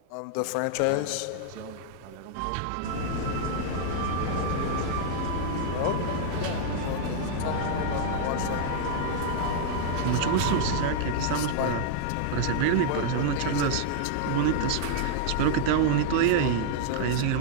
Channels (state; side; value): different; both; correlation -0.01